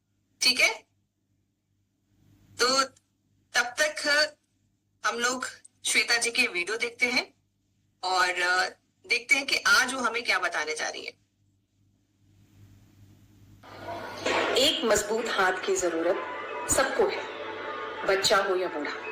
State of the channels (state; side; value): identical; both; correlation 1.00